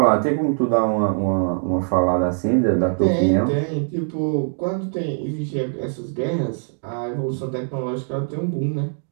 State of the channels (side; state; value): left; silent; digital silence